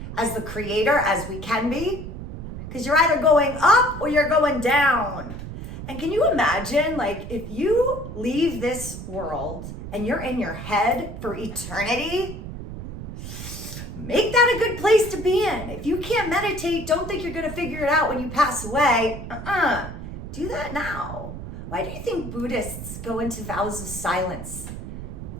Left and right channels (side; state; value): right; noise; rumble, 9 dB below the sound